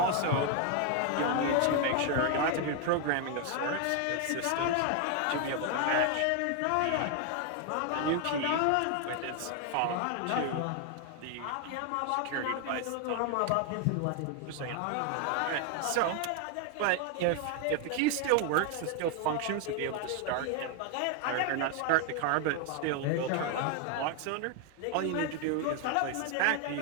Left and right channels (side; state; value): both; different; correlation 0.01